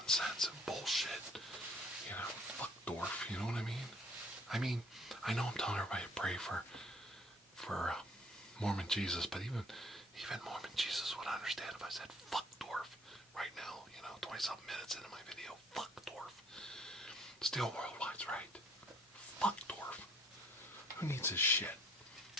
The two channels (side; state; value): both; normal; correlation 0.58